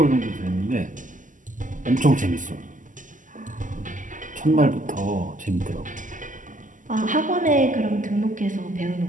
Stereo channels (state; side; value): late; left; 0.38 ms